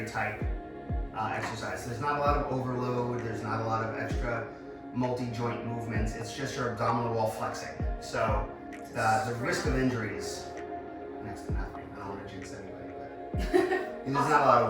type exercise. There's not a lot of overload, there's not a lot of extra multi-joint movements. It's just your abdominal wall flexing. So the risk of injury is next to nothing. I don't want to jinx anybody, but there's not a lot of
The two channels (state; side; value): identical; both; correlation 1.00